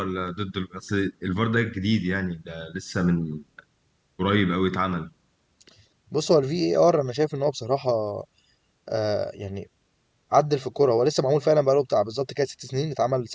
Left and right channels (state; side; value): identical; both; correlation 1.00